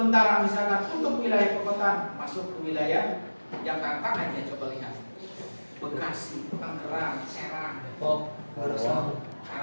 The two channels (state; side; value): inverted; both; correlation -1.00